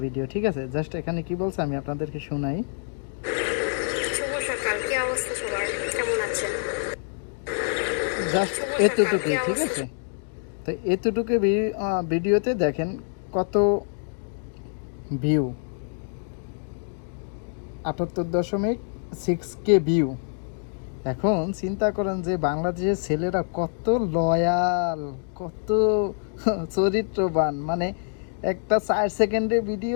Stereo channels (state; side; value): silent; right; digital silence